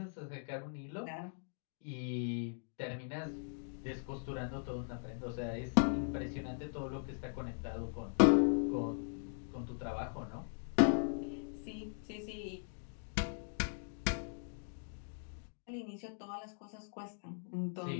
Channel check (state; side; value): silent; right; digital silence